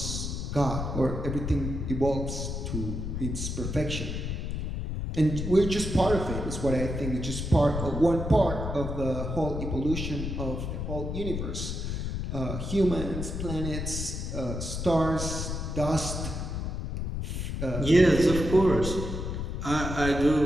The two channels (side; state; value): left; noise; rumble, 4 dB below the sound